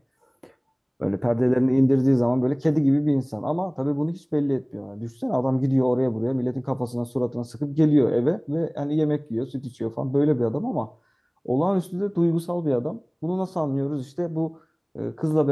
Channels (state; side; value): identical; both; correlation 1.00